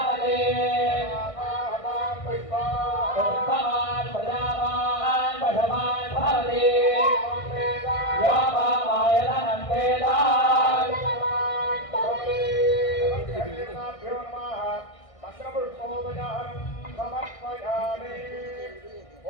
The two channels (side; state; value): right; late; 1.6 ms